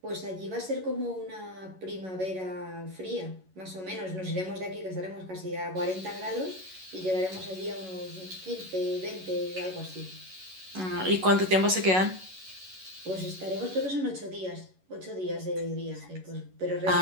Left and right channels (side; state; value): left; late; 11 ms